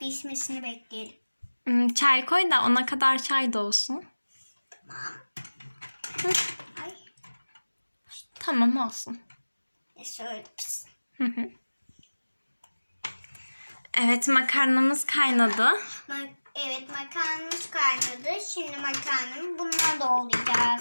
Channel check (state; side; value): inverted; both; correlation -1.00